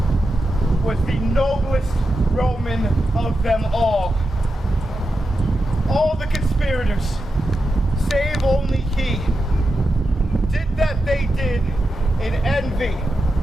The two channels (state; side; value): normal; both; correlation 0.89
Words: was the noblest Roman of them all. All the conspirators, save only he, did that they did in envy